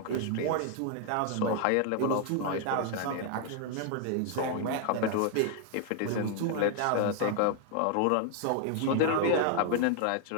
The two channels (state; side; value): different; both; correlation 0.00